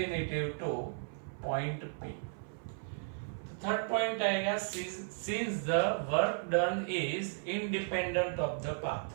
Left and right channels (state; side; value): silent; left; 54 dB below the other